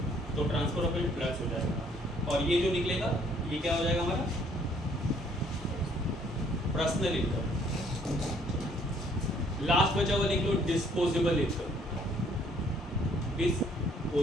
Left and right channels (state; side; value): normal; both; correlation 0.63